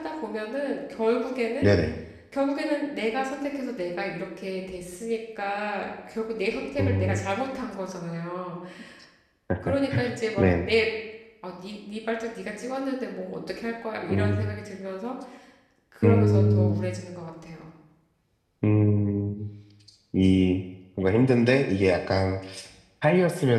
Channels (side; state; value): both; identical; correlation 1.00